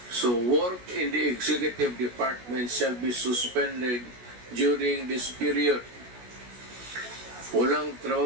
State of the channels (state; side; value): late; left; 16 ms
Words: So work in the executive department shall be suspended during this period. Walang